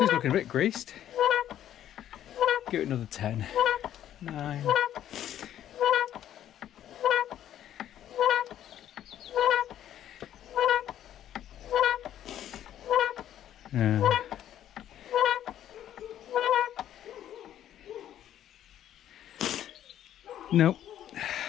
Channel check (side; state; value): right; quieter; 11.2 dB